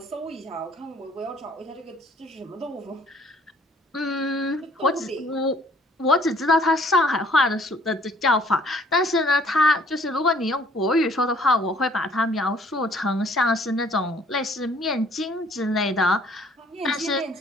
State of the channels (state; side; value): normal; both; correlation 0.59